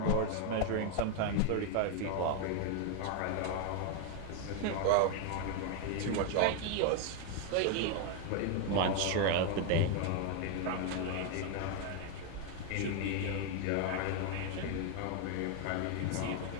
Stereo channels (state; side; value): different; both; correlation 0.01